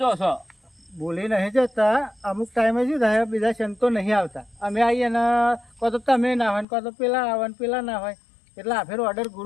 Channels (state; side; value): drops out; right; at 6.7 s